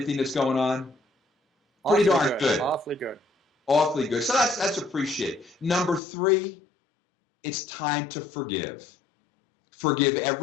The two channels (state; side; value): drops out; right; at 6.0 s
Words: that's going on? Pretty darn good. Awfully good. Awfully good. So that's appreciate. Number 3, it's time to forgive. Forgive